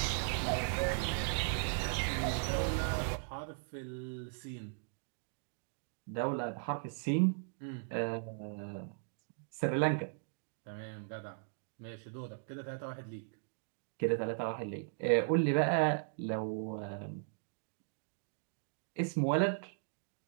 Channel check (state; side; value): silent; left; digital silence